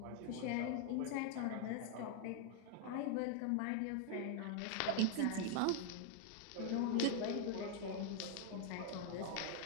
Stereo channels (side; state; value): both; different; correlation 0.00